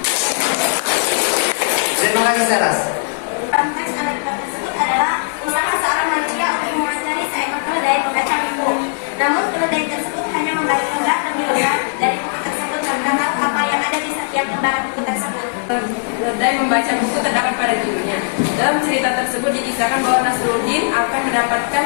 Terima kasih, Seras. Teks anekdot tersebut adalah usaha seorang manusia untuk mewawancari seekor keledai membaca buku. Namun keledai tersebut hanya membaca lembar lebih lembar dari buku tersebut tanpa tahu apa yang ada di setiap lembaran buku tersebut. Keledai membaca buku terdapat pada judulnya. Dalam cerita tersebut dikisahkan bahwa Nasruddin akan mendapatkan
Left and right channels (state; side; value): silent; right; digital silence